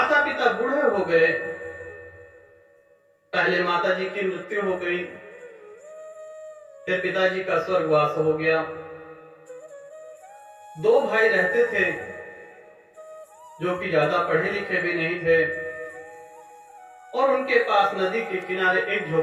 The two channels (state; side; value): identical; both; correlation 1.00